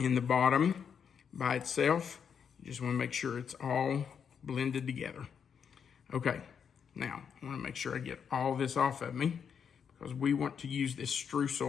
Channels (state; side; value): quieter; right; 7.2 dB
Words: the bottom by itself. You just want to make sure it's all blended together. Okay, now I want to make sure I get all this off of me because we want to use this